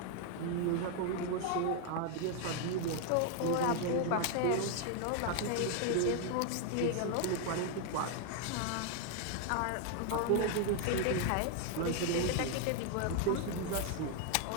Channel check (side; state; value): both; different; correlation 0.01